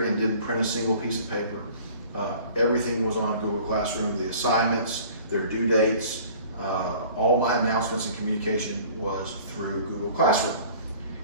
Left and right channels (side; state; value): both; inverted; correlation -0.48